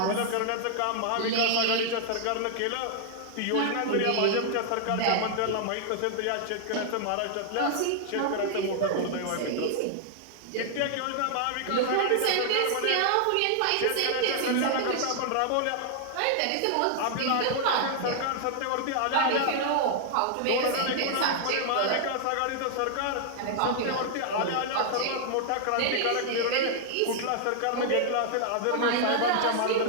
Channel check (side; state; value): both; different; correlation 0.00